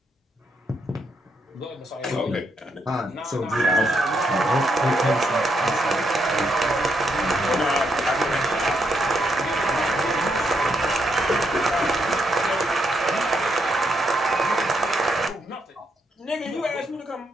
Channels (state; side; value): normal; both; correlation 0.78